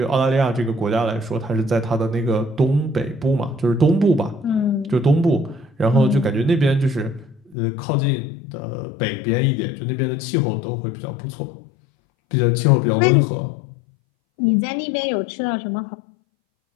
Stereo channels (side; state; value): right; drops out; at 7.6 s